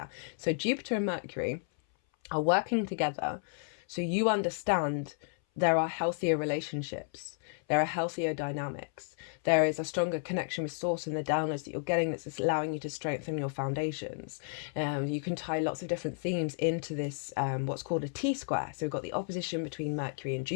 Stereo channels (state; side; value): silent; right; 56 dB below the other